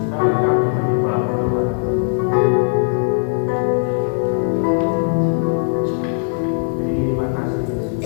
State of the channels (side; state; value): right; silent; 58 dB below the other